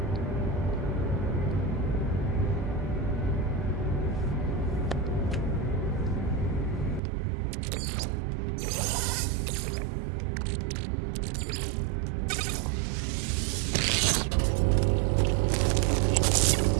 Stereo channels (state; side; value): drops out; left; at 7.0 s